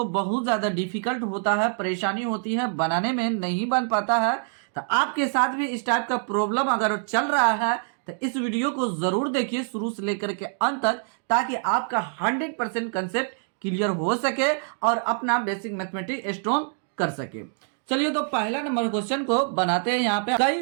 बहुत ज्यादा डिफिकल्ट होता है, परेशानी होती है, बनाने में नहीं बन पाता है। तो आपके साथ भी इस टाइप का प्रॉब्लम अगर चल रहा है तो इस वीडियो को जरूर देखिए शुरू से लेकर के अंत तक, ताकि आपका 100% कंसेप्ट क्लियर हो सके और अपना बेसिक मैथमेटिक्स स्ट्रॉन्ग कर सके। चलिए तो पहला नंबर क्वेश्चन को बनाते हैं। यहाँ पे कई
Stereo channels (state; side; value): silent; left; digital silence